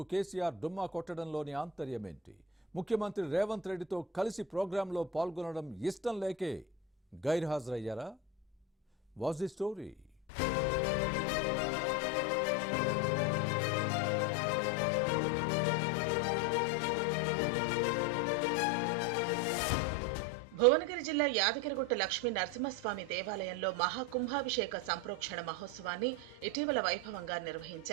కేసీఆర్ డుమ్మా కొట్టడంలోని ఆంతర్యమేంటి? ముఖ్యమంత్రి రేవంత్ రెడ్డితో కలిసి ప్రోగ్రాంలో పాల్గొనడం ఇష్టం లేకే గైర్హాజరయ్యారా? Was the story? భువనగిరి జిల్లా యాదగిరిగుట్ట లక్ష్మీ నరసింహస్వామి దేవాలయంలో మహాకుంభాభిషేక సంప్రోక్షణ మహోత్సవాన్ని ఇటీవల వైభవంగా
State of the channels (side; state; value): both; normal; correlation 0.21